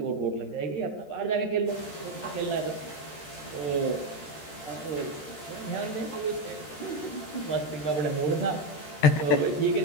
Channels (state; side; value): late; right; 13 ms